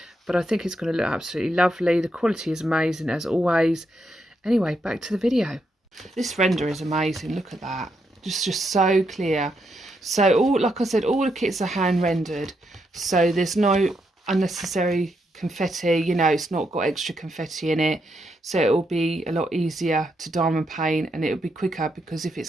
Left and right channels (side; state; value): both; normal; correlation 0.80